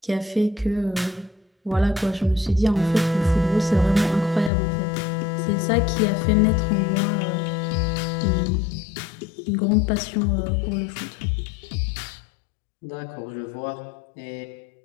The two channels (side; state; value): right; drops out; at 4.5 s